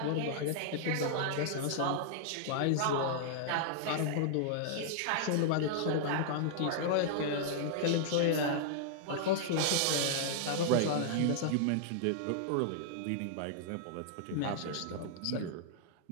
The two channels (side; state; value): both; different; correlation -0.01